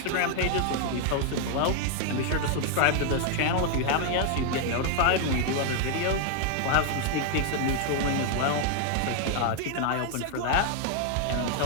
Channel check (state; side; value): different; both; correlation 0.00